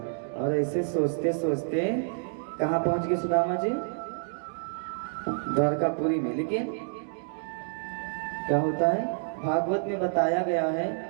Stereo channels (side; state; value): left; silent; digital silence